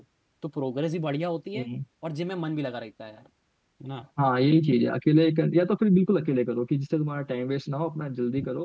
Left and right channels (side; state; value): both; identical; correlation 1.00